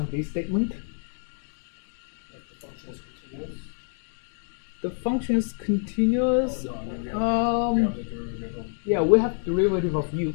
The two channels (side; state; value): right; silent; 60 dB below the other